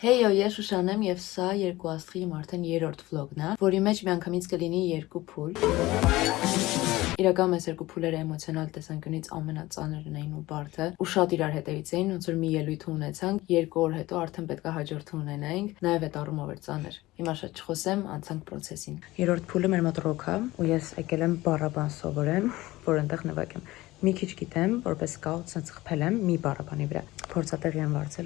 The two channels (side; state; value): right; quieter; 18.4 dB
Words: Heyo, ես Շուշանն եմ եւ սա երկու աստղի իմ արդեն երրորդ վլոգն է, որի մեջ միանգամից կլինի երկու փուլ։ Իրականում այս երկու փուլերը էմոցիոնալ տեսանկյունից ամենածանրն էին ու բարդը, ու շատ իրար հետևից էին, ոնց որ մի ելույթ ունեցանք, 2 օր հետո արդեն պետք է հաջորդը ունենայինք, նաեւ այդ առումով էր ծանր։ Հիմա շատ չխոսեմ, անցանք process-ին։ Երրորդ փուլը մեր մոտ ռոք է, ու ես եկել եմ բառաբան սովորեմ, որ այնտեղ նվագեմ։ Մի քիչ գիտեմ, որպես սկաուտ ցած խփել եմ մի բառաբանի վրա։ Փորձատեղի եմ